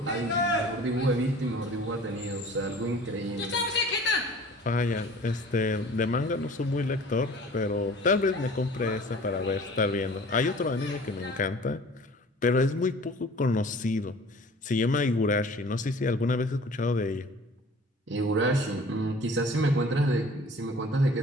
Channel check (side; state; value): both; normal; correlation 0.46